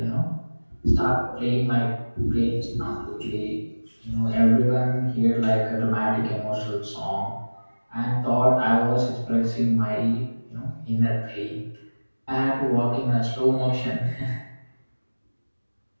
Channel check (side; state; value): both; inverted; correlation -1.00